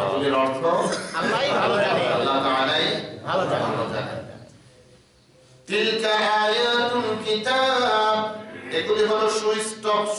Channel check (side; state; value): both; identical; correlation 1.00